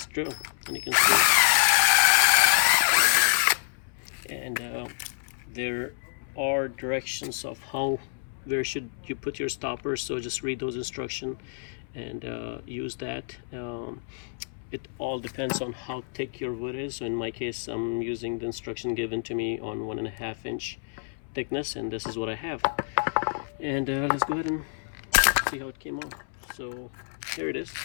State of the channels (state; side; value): silent; right; 59 dB below the other